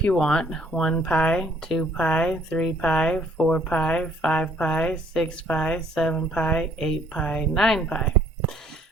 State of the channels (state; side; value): normal; both; correlation 0.62